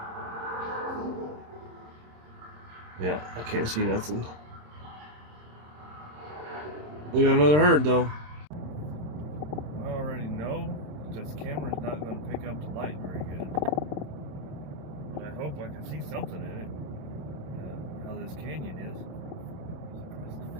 Yeah, I can't see nothing. We got another herd, though. I already know that this camera's not going to pick up the light very good. But I hope I can see something in it. How this canyon is.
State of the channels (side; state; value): left; late; 27 ms